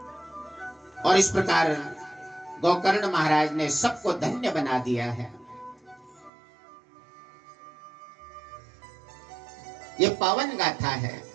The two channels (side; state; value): left; drops out; at 6.3 s